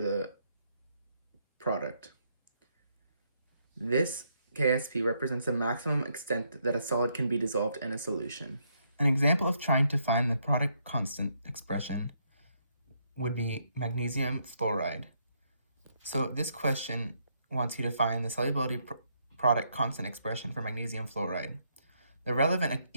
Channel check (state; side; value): inverted; both; correlation -0.74